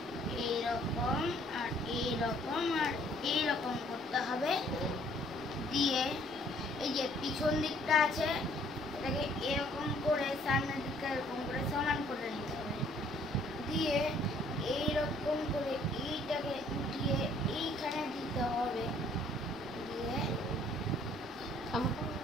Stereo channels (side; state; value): both; normal; correlation 0.61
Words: এইরকম আর এইরকম আর এইরকম করতে হবে। দিয়ে এই যে পিছন দিকটা আছে এটাকে এরকম করে সামনের দিকটা এরকম করে সমান করে নিতে হবে। দিয়ে এইরকম করে এইটাকে উঠিয়ে এইখানে দিতে হবে। দিয়ে